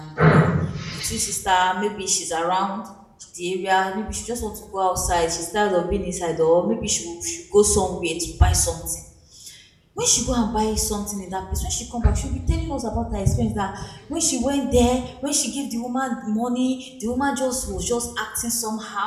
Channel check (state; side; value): identical; both; correlation 1.00